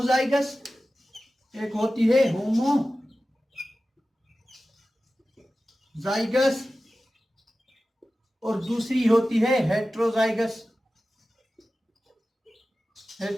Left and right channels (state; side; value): normal; both; correlation 0.95